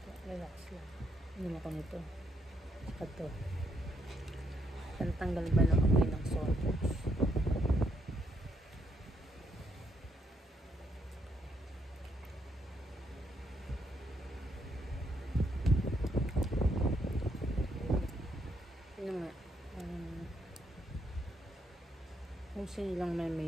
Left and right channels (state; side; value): normal; both; correlation 0.75